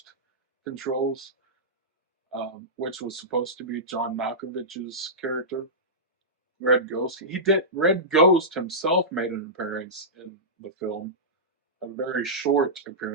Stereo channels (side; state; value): both; normal; correlation -0.15